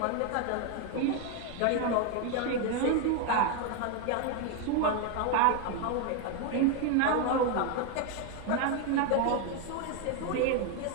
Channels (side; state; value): both; different; correlation 0.01